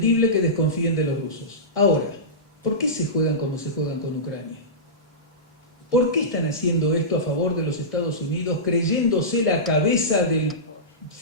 que desconfíen de los rusos. Ahora, ¿por qué se juegan como se juegan con Ucrania? ¿Por qué están haciendo esto a favor de los Estados Unidos, creyéndose la cabeza del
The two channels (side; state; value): both; normal; correlation -0.17